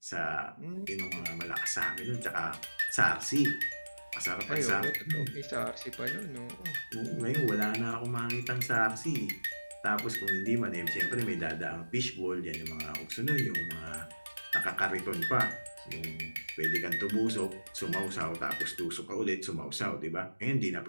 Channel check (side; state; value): both; inverted; correlation -1.00